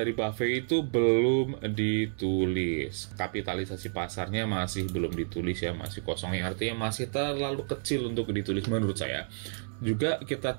BAFE itu belum ditulis, kapitalisasi pasarnya masih belum ditulis ya, masih kosong, yang artinya masih terlalu kecil untuk ditulis menurut saya. Juga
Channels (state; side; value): silent; left; digital silence